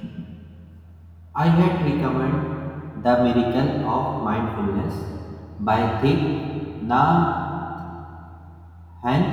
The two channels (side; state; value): both; identical; correlation 1.00